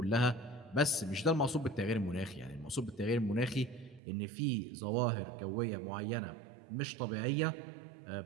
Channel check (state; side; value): drops out; left; at 4.0 s